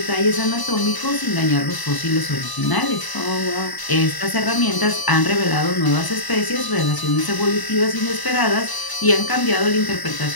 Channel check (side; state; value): right; late; 1.0 ms